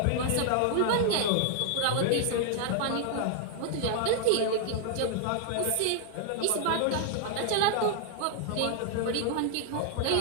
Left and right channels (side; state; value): both; different; correlation 0.00